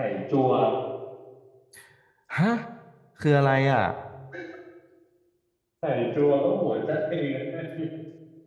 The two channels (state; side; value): identical; both; correlation 1.00